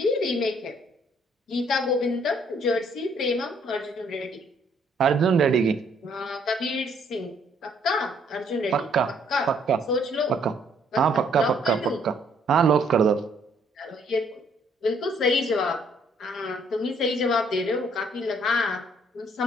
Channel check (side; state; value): both; normal; correlation 0.66